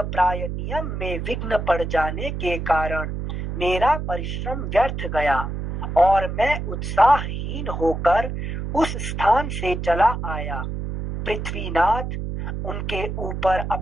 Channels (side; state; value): right; noise; hum, 4 dB below the sound